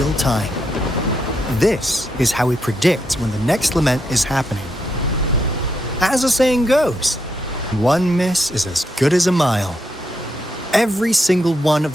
time. This is how we predict when the next lament is happening. As the saying goes, one miss is as good as a mile. Every single one of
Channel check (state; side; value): normal; both; correlation 0.80